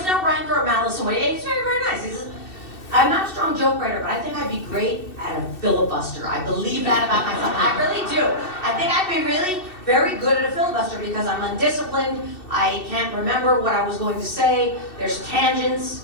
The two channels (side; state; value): right; late; 2.7 ms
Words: no rancor or malice in it. He was very, very nice. He said, "I'm not a strong joke writer, but I think I'd be great at a filibuster." I believe that about myself. I really do. I think I'd be really very good at a filibuster because I'm undisciplined. I can't remember what I was going to say. There's tangents.